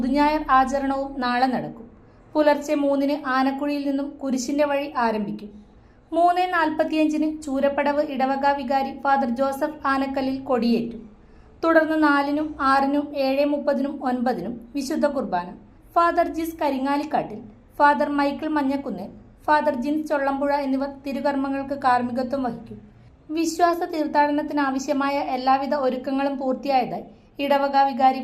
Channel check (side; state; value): both; identical; correlation 1.00